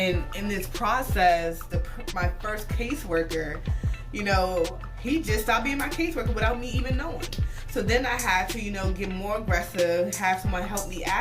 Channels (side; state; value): both; identical; correlation 1.00